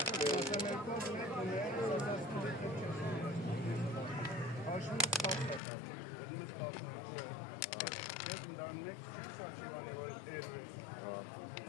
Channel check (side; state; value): right; drops out; at 5.6 s